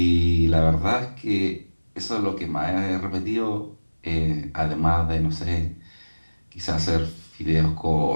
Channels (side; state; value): both; inverted; correlation -1.00